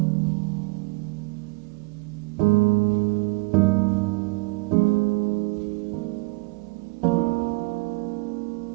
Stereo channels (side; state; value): left; quieter; 26.8 dB